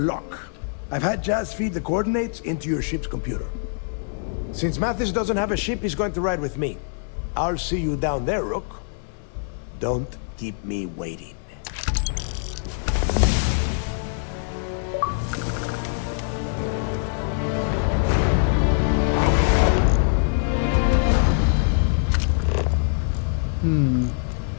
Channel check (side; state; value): right; silent; 63 dB below the other